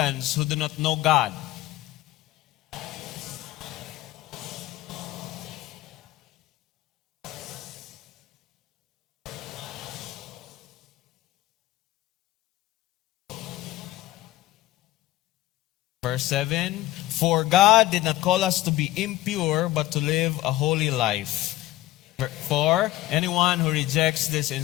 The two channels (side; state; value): right; quieter; 16.1 dB